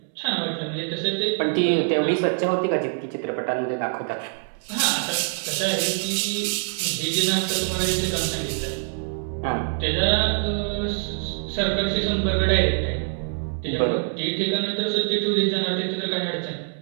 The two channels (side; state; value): left; silent; digital silence